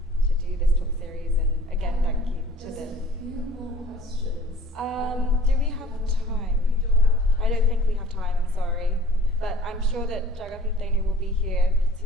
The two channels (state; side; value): normal; both; correlation 0.49